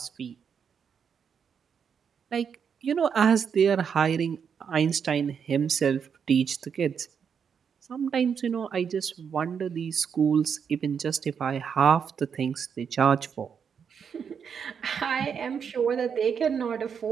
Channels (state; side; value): quieter; left; 7.0 dB